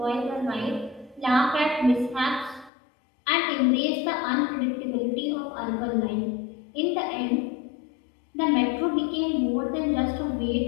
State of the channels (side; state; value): right; drops out; at 2.7 s